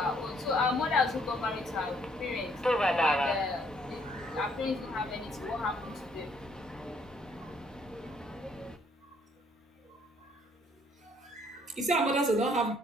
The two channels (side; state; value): both; normal; correlation 0.66